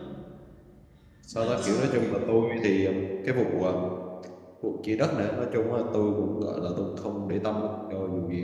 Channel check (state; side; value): identical; both; correlation 1.00